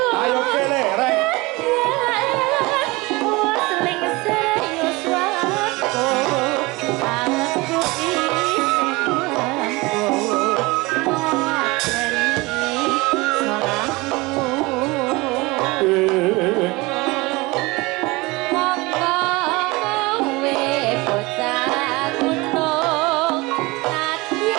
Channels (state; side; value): quieter; left; 23.4 dB